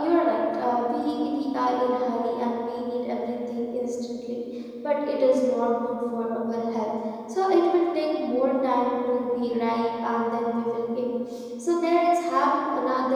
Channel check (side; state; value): both; identical; correlation 1.00